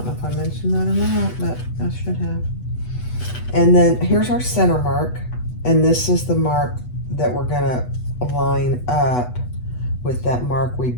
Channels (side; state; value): right; late; 8.1 ms